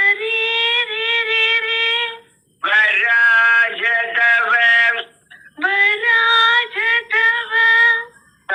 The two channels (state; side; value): identical; both; correlation 1.00